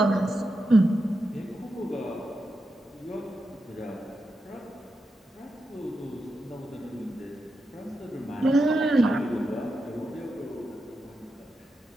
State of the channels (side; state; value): both; normal; correlation 0.88